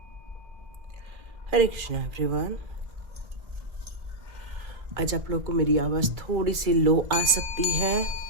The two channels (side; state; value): left; late; 2.3 ms